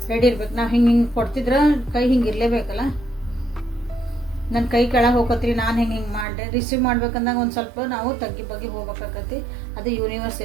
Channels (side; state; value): left; drops out; at 6.2 s